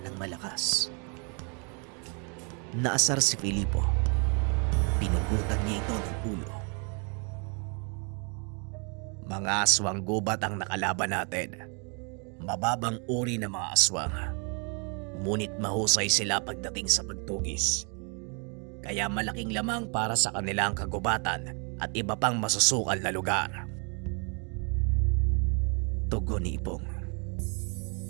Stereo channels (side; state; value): left; quieter; 36.1 dB